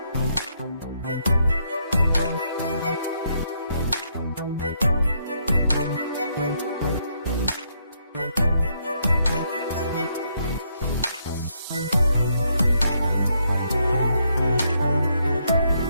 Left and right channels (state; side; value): inverted; both; correlation -0.75